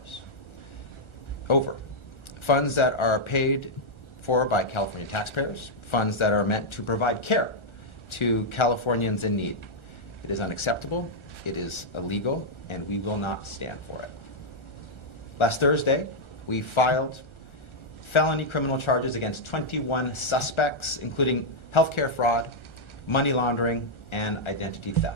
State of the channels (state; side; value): late; right; 1.4 ms